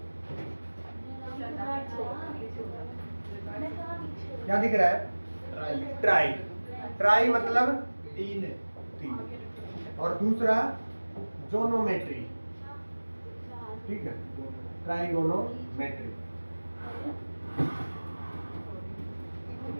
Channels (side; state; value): both; inverted; correlation -1.00